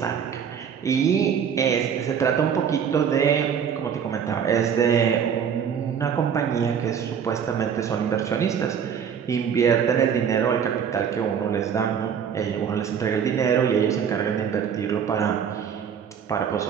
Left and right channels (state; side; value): quieter; left; 7.7 dB